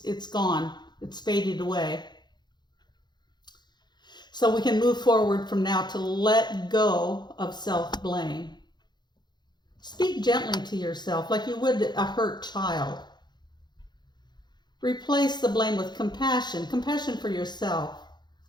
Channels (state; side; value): late; right; 0.21 ms